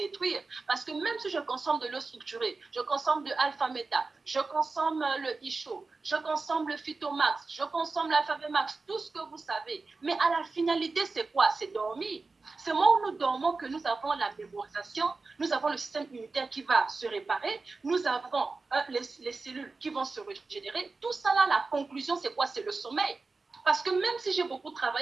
Parce que même si je consomme de l'eau structurée, je consomme de alpha-méta, je consomme le ISHO, je consomme le phytomax, je consomme l'alpha-max, tout ce que vous savez. Mais à la finalité, c'est quoi? C'est dormir. C'est le moment où nous dormons que nous avons la mémorisation, nous avons le système immunitaire qui va se réparer, nous avons les cellules qui vont se régénérer. Tout ça là, la conclusion, c'est quoi? C'est le sommeil. Parce que même si j'ai beaucoup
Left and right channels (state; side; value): quieter; left; 3.9 dB